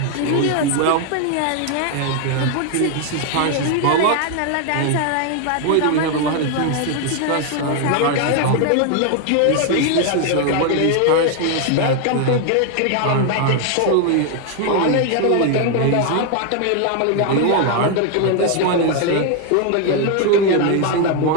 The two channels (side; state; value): both; different; correlation 0.01